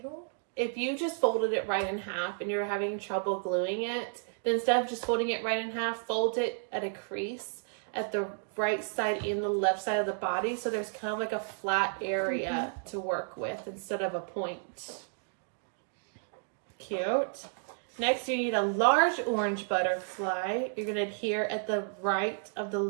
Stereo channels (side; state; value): left; silent; digital silence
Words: If you just folded it right in half and you're having trouble gluing it, then instead of just folding it right in half, fold it at a crease at the right side and the left side of the body. So there's kind of like a flat area to work with instead of a point. Cute. Next, you need a large orange butterfly. You're going to adhere at the right of the